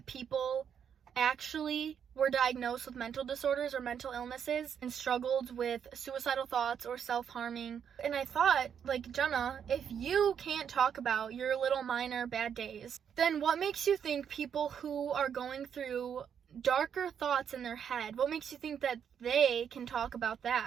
people actually were diagnosed with mental disorders or mental illnesses and struggled with suicidal thoughts or self-harming. And I thought, Jenna, if you can't talk about your little minor bad days, then what makes you think people who are going through darker thoughts in their head, what makes you think that they can talk about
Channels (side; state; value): left; quieter; 8.0 dB